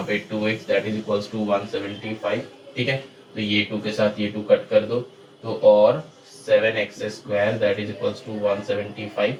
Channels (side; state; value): both; identical; correlation 1.00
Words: पे 2x that is equals to 175, ठीक है। तो ये 2 के साथ ये 2 कट कर दो, तो और 7x square that is equals to 175,